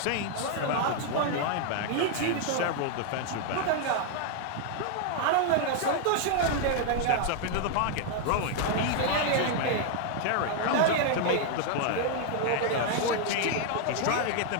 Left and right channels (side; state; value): both; different; correlation 0.00